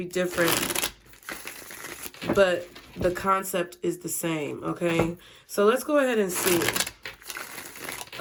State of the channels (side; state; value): both; identical; correlation 1.00